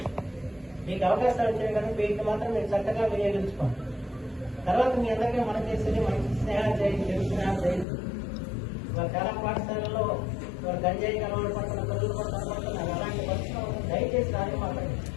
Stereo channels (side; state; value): right; drops out; at 7.9 s